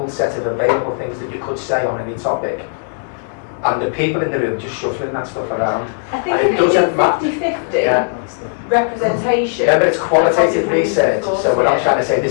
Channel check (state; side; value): silent; right; digital silence